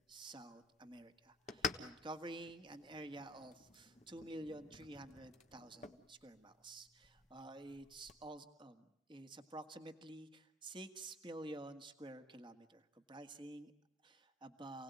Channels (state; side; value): normal; both; correlation 0.48